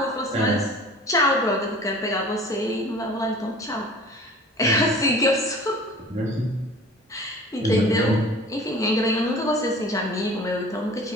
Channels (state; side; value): normal; both; correlation 0.44